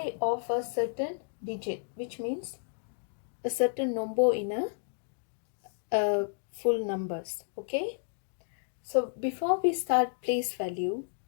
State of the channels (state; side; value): silent; right; digital silence